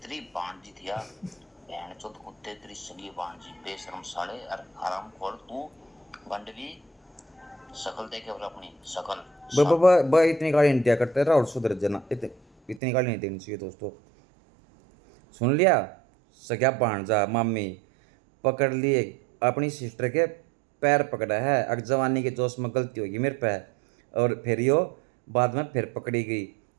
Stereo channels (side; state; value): left; drops out; at 12.8 s